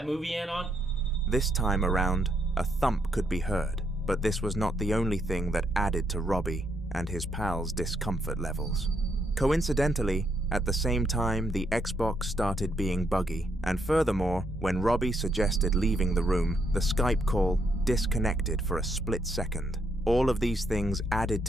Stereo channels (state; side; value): normal; both; correlation 0.76